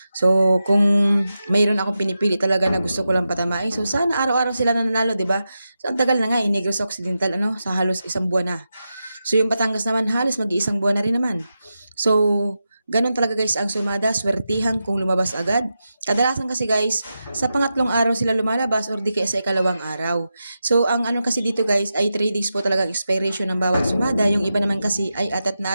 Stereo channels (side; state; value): both; inverted; correlation -0.90